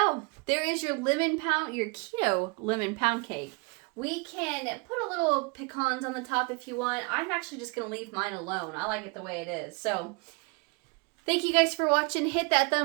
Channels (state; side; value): quieter; left; 30.0 dB